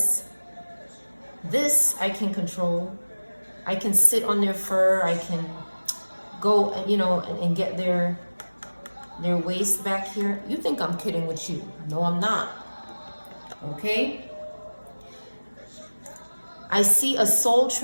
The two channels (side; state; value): both; inverted; correlation -1.00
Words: I can control. I can sit on their fur. I can go, you know, and get their waist back here. You think I'm kidding with you. No, I'm not. Okay? I see a soul